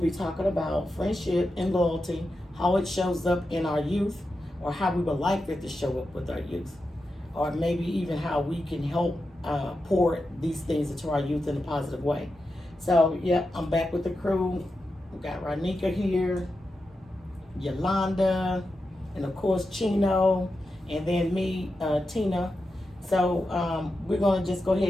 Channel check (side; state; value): both; normal; correlation 0.89